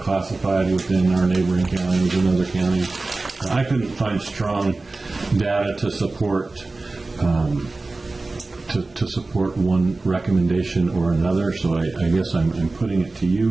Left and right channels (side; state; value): left; quieter; 3.4 dB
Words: within our neighboring counties and other counties. I couldn't find strong data to support to support one recommendation or another, so I guess I'm putting it to